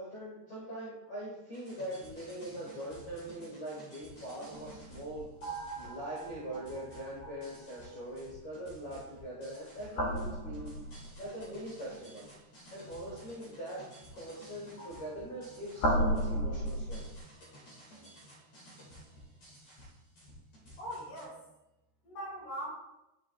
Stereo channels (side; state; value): right; late; 13 ms